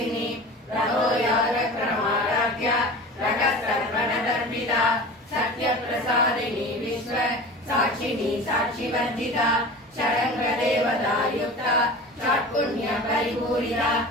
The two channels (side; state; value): both; normal; correlation 0.35